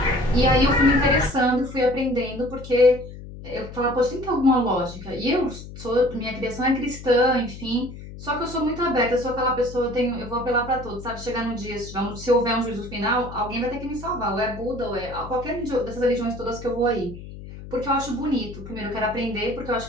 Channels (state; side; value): noise; left; hum, 13 dB below the sound